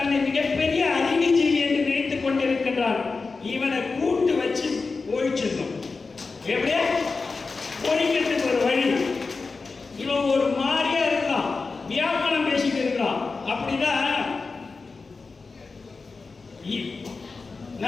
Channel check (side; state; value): right; quieter; 4.2 dB